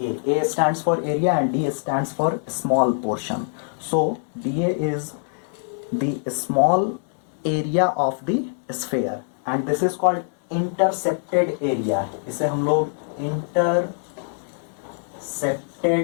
A stands for area and D stands for small portion. So dA is the small area of the sphere and this is called intercepted area. इसे हम लोग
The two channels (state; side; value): silent; right; 63 dB below the other